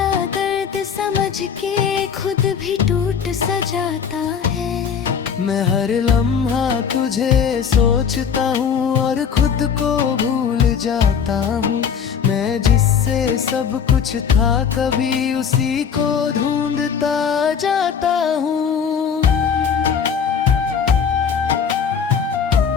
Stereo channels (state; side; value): quieter; right; 7.1 dB